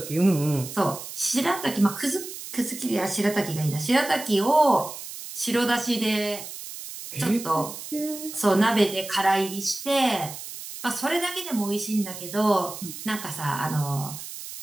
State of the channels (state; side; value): noise; right; hiss, 11 dB below the sound